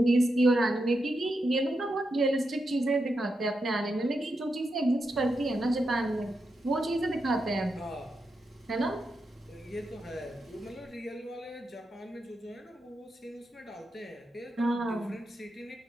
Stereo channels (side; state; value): both; normal; correlation 0.86